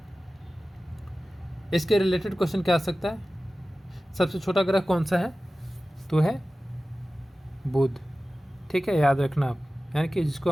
इसके रिलेटेड क्वेश्चन क्या आ सकता है, सबसे छोटा ग्रह कौन सा है, तो है बुध। ठीक है, याद रखना आप, यानी कि जिसको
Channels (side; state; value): both; normal; correlation 0.96